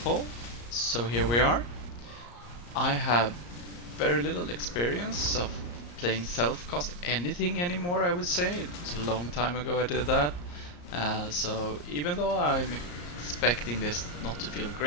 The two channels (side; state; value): right; late; 34 ms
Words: poll. So here we are. I have very little experience of playing self-cost anything anymore, I would say. It's a long time ago I did that. So even though I'm expecting this not to feel